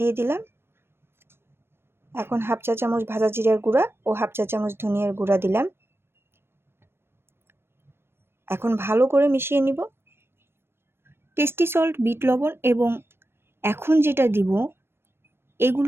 দিলাম। এখন 1/2 চা চামচ ভাজা জিরার গুঁড়া ও 1/2 চা চামচ ধনিয়ার গুঁড়া দিলাম। এখন ভালো করে মিশিয়ে নিব। টেস্টি সল্ট, বিট লবণ এবং এখন যেটা দিব,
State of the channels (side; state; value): left; late; 0.12 ms